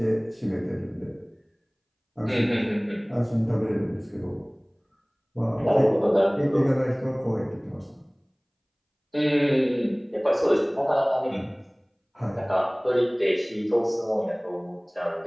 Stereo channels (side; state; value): both; identical; correlation 1.00